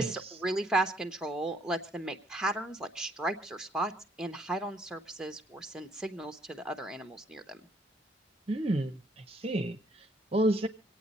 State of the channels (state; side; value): normal; both; correlation 0.67